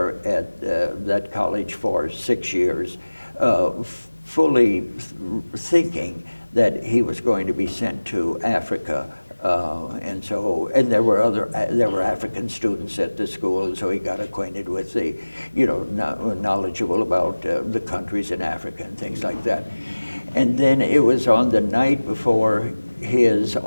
at that college for 6 years, fully thinking that he was going to be sent to Africa. And there were African students at the school, and so he got acquainted with the, you know, knowledgeable about the countries in Africa and things like that. And then it was on the night before his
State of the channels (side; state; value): both; inverted; correlation -1.00